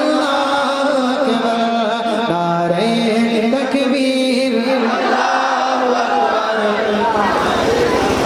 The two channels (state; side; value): identical; both; correlation 1.00